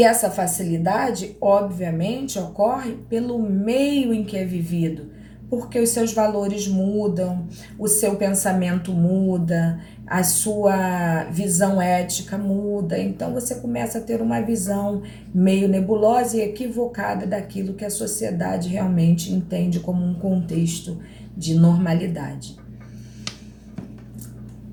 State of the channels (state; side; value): identical; both; correlation 1.00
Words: essa facilidade, obviamente, ocorre pelo meio em que é vivido, porque os seus valores mudam, o seu pensamento muda, a sua visão ética muda, então você começa a ter uma visão meio nebulosa e equivocada daquilo que a sociedade realmente entende como um contexto de normalidade.